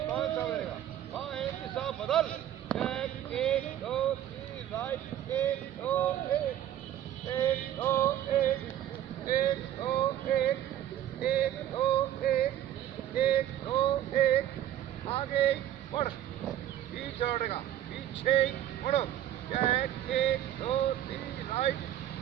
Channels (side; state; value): left; quieter; 11.7 dB